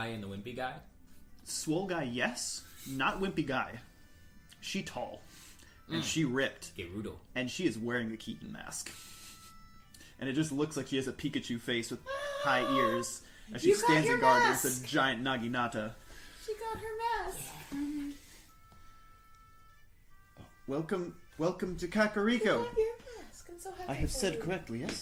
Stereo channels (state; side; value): identical; both; correlation 1.00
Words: and the wimpy guy? Swole guy, yes. Not wimpy guy. She tall. And she ripped. Gerudo. And she is wearing the Keaton mask. And it just looks like she has a Pikachu face with high ears. As she You got stands your in guard mask! against a giant Naginata. She got her mask. Welcome to Kakariko. Your mask. I'm so happy I have for said you. correctly,